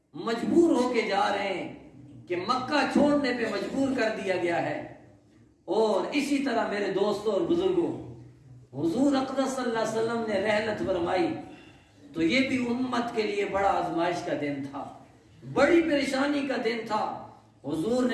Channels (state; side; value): identical; both; correlation 1.00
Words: مجبور ہو کے جا رہے ہیں کہ مکہ چھوڑنے پہ مجبور کر دیا گیا ہے۔ اور اسی طرح میرے دوستوں اور بزرگوں، حضور اقدس صلی اللہ علیہ وسلم نے رحلت فرمائی تو یہ بھی امت کے لیے بڑا آزمائش کا دن تھا، بڑی پریشانی کا دن تھا۔ حضور